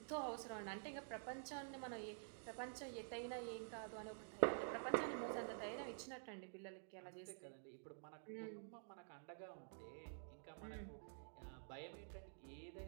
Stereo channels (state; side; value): silent; left; digital silence